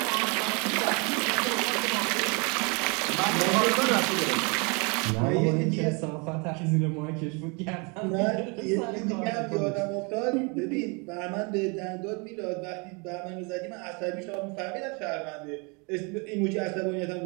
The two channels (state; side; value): quieter; left; 31.7 dB